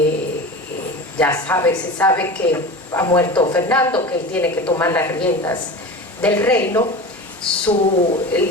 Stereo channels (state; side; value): normal; both; correlation 0.31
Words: sabe que ha muerto Fernando, que él tiene que tomar las riendas del reino,